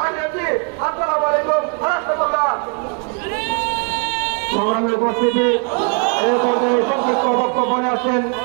আছি। আসসালামু আলাইকুম রাষ্ট্রপতি। সংগ্রামী উপস্থিতি, এই পর্যায়ে সংক্ষিপ্ত বক্তব্য আছেন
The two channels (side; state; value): left; quieter; 38.4 dB